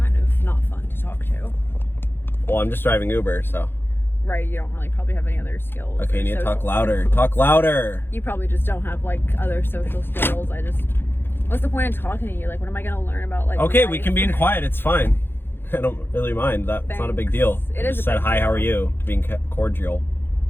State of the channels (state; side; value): late; right; 0.10 ms